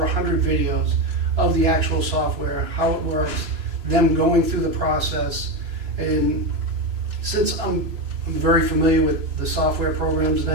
100 videos of the actual software, how it works, them going through the process. And since I'm very familiar with the software programs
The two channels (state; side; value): late; left; 3.0 ms